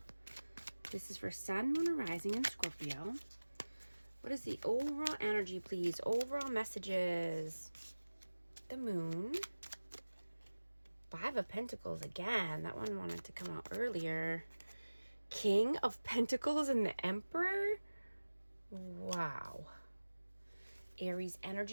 This is for Sun, Moon, or Rising in Scorpio. What is the overall energy, please? Overall messages. The Moon. Five of Pentacles again. That one wanted to come out earlier. King of Pentacles and the Emperor. Wow. Aries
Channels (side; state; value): both; inverted; correlation -1.00